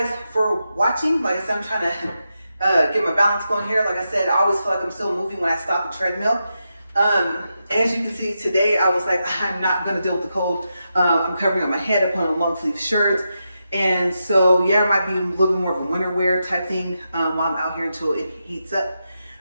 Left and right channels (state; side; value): inverted; both; correlation -0.87